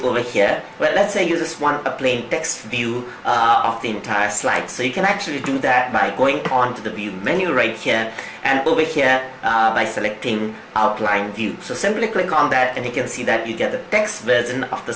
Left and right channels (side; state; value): both; identical; correlation 1.00